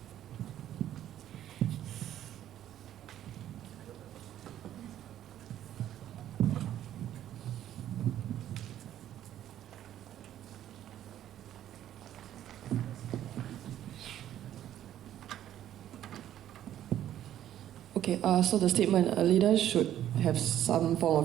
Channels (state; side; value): quieter; left; 11.6 dB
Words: Okay, so the statement, a leader should have some form